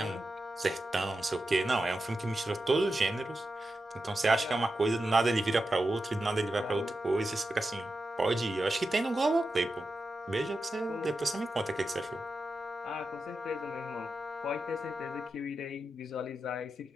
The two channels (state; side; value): normal; both; correlation 0.90